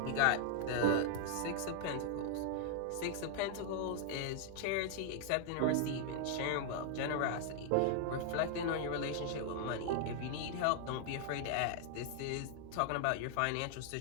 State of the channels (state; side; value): different; both; correlation 0.00